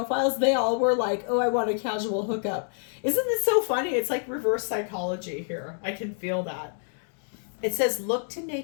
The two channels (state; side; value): silent; right; 60 dB below the other